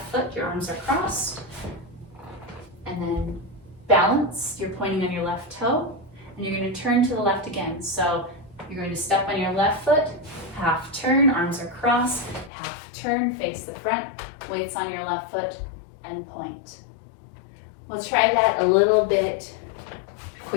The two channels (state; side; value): drops out; right; at 12.5 s